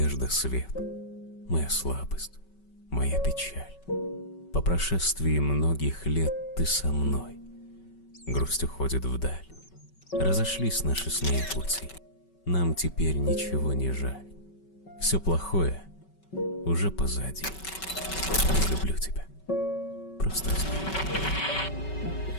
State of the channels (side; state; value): right; late; 5.3 ms